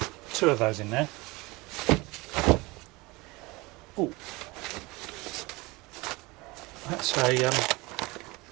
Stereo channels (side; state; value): left; quieter; 23.5 dB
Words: 2 of those in there. Oh, that's a